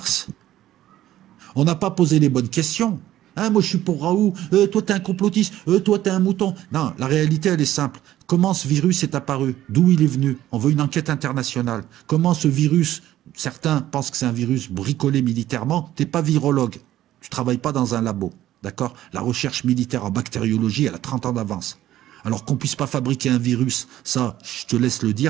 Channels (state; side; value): quieter; left; 13.5 dB